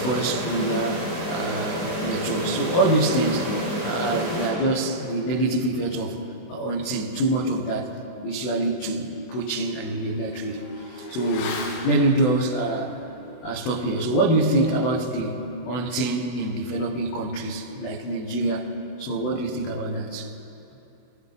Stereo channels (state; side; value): late; right; 24 ms